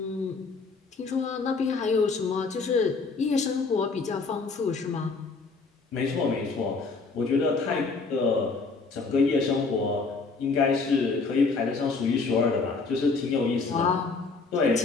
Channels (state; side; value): quieter; right; 4.2 dB